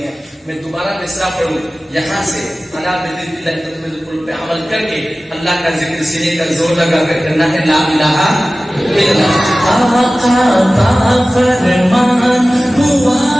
हैं। मैं दोबारा मिसरा पढ़ूं यहाँ से, अला बिल्कुल पे अमल करके अल्लाह का जिक्र सीने का जोर लगा कर करना है। ला इलाहा इल्लल्लाह। आका का फरमान हुआ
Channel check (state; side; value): normal; both; correlation 0.96